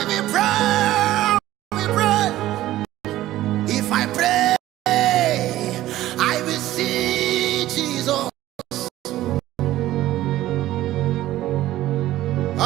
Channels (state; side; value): quieter; left; 14.9 dB